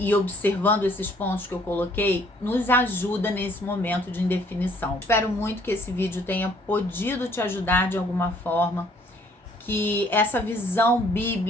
observando esses pontos que eu coloquei, nos ajuda nesse momento de indefinição. Espero muito que esse vídeo tenha podido te ajudar de alguma forma, que essa visão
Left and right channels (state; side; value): normal; both; correlation 0.61